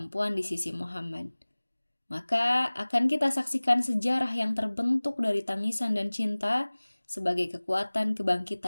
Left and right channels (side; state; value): both; inverted; correlation -1.00